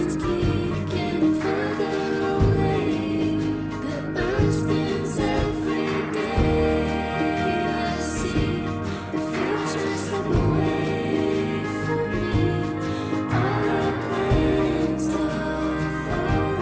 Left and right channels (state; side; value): identical; both; correlation 1.00